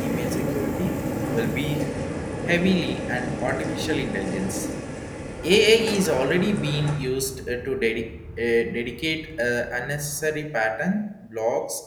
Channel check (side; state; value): both; identical; correlation 1.00